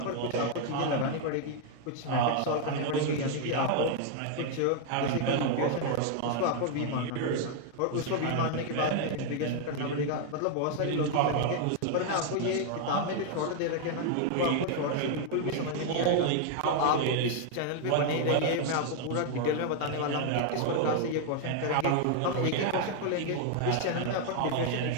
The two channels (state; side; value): different; both; correlation 0.00